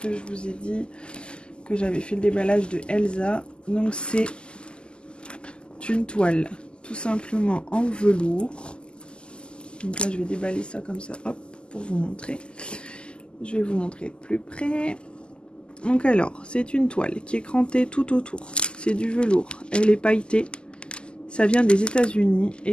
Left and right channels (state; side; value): late; right; 0.049 ms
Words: je vous ai dit que j'avais fait le déballage de Elsa. Donc c'est une toile tout simplement en velours. Donc là je vais déballer ça comme ça, hop, pour vous montrer. Je vais vous montrer de plus près. Donc alors, c'est une toile qui est crantée tout autour. C'est du velours. Elle est pailletée. Ça vient des États-Unis